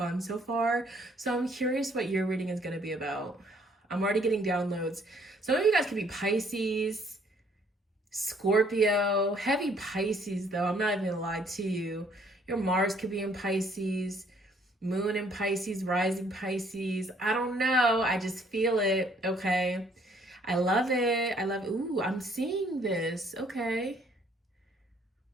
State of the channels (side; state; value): both; normal; correlation 0.63